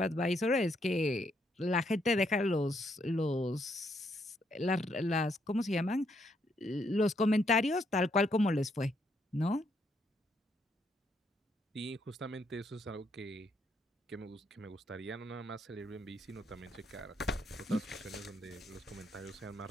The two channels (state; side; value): normal; both; correlation 0.74